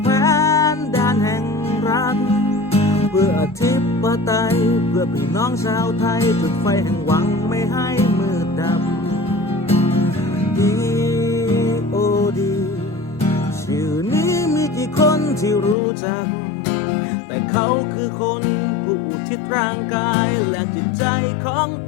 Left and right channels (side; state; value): right; drops out; at 15.8 s